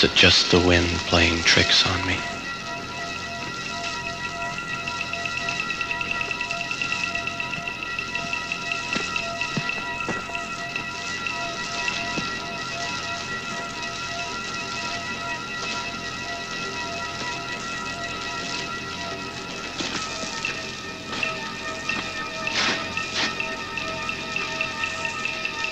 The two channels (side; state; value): both; identical; correlation 1.00